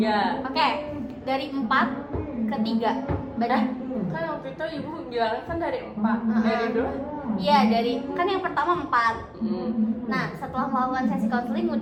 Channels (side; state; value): both; identical; correlation 1.00